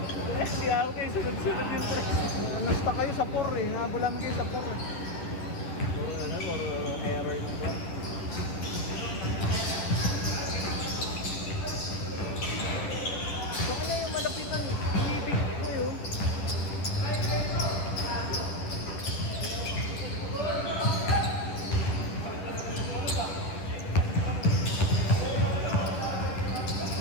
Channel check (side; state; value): right; late; 10 ms